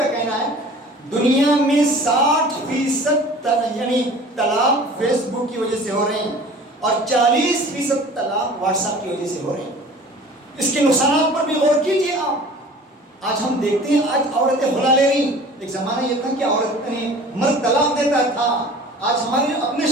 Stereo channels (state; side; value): normal; both; correlation 0.44